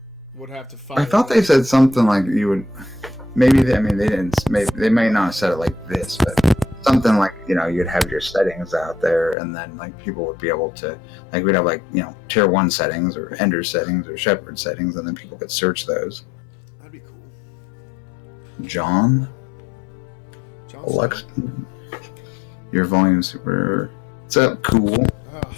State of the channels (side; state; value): right; drops out; at 9.3 s